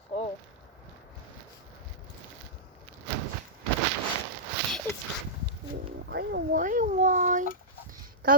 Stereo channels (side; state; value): both; normal; correlation -0.12